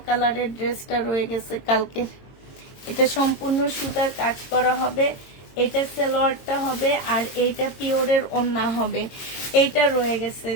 কালারের ড্রেসটা রয়ে গেছে কালকে। এটা সম্পূর্ণ সুতার কাজ করা হবে, এটা সালোয়ারটা হবে, আর এইটা পিওরের ওড়না হবে। এইটা রয়ে গেছে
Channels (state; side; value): late; right; 22 ms